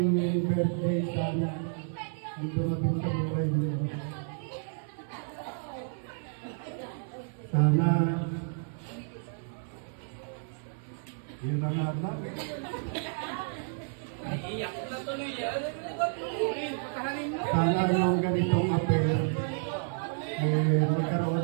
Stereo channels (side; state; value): left; silent; 57 dB below the other